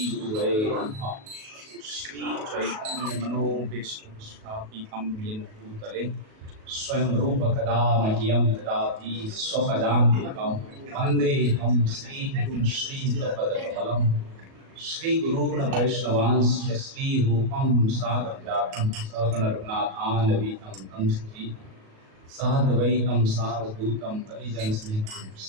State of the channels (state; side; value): late; left; 37 ms